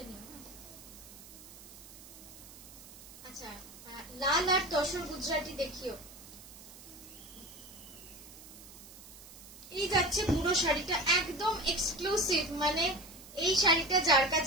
নিও। আচ্ছা, লাল আর তসর গুজরাটি দেখিও। এই যাচ্ছে পুরো শাড়িটা, একদম এক্সক্লুসিভ। মানে এই শাড়িটা যার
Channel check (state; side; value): noise; right; hiss, 17 dB below the sound